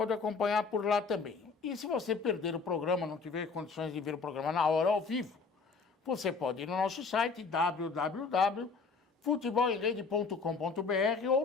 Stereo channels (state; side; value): quieter; right; 4.8 dB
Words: acompanhar por lá também. E se você perder o programa, não tiver condições de ver o programa na hora, ao vivo, você pode ir no nosso site, www.futebolemrede.com.br